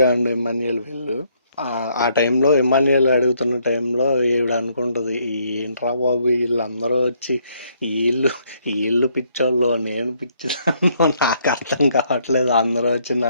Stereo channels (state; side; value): inverted; both; correlation -0.69